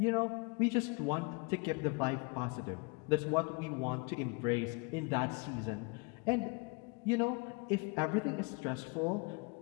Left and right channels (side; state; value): right; quieter; 31.1 dB